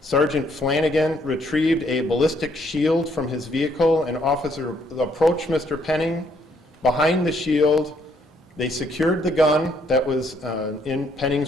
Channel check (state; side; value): normal; both; correlation 0.69